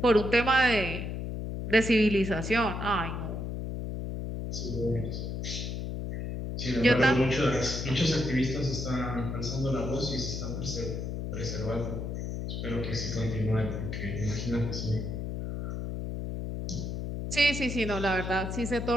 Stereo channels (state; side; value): noise; left; hum, 4 dB below the sound